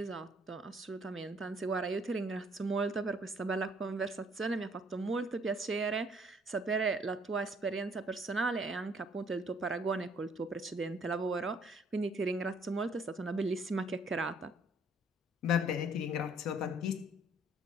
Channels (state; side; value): normal; both; correlation 0.61